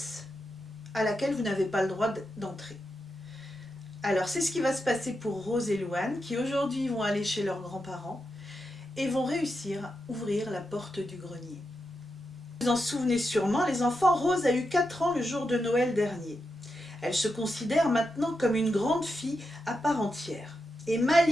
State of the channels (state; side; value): normal; both; correlation 0.87